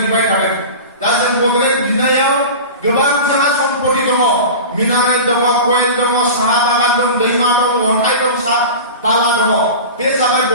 बिबाय थादों। दा जों बड'लेण्ड बिनायाव गोबां जोंहा सम्पथि दङ। मिनारेल दङ, कयेल दङ, साहा बागान दं, दैमा दं, अन्थाइ दं, बाला दङ। बे जाबाय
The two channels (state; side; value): inverted; both; correlation -0.31